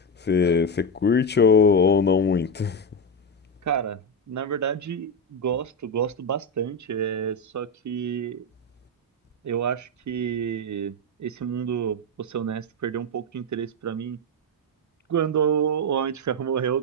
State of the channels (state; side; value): normal; both; correlation 0.10